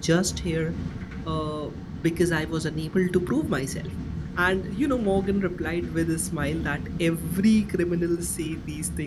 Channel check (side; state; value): both; identical; correlation 1.00